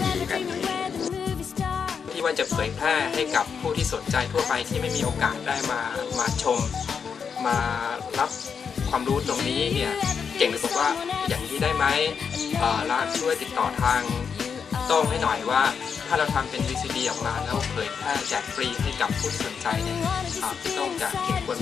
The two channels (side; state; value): right; quieter; 6.4 dB